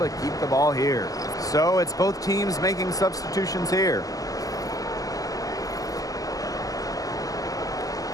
keep the ball here. So it's both teams making substitutions here.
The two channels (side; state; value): right; late; 0.17 ms